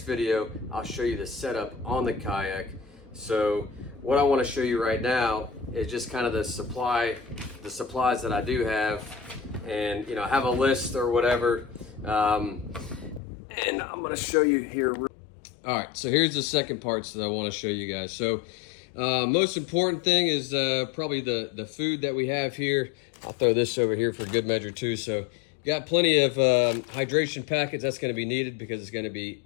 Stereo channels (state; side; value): drops out; right; at 13.2 s